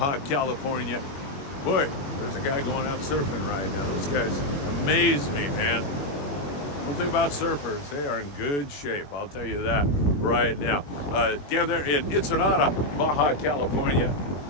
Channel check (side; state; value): right; late; 21 ms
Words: California. Boy, there's a guy going out surfing right now. Those guys amaze me, man. One thing about surfers, they are in good shape. I'll tell you that right now. Down there in Ensenada, Baja California,